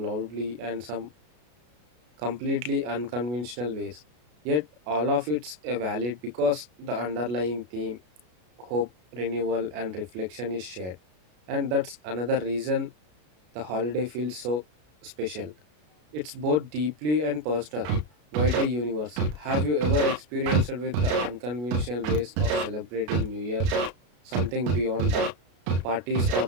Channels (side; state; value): left; late; 33 ms